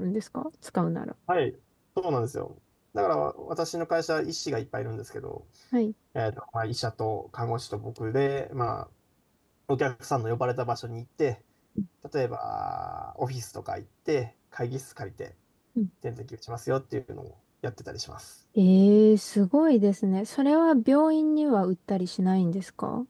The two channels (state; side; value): identical; both; correlation 1.00